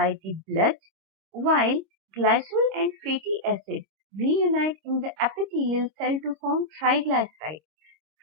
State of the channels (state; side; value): late; left; 26 ms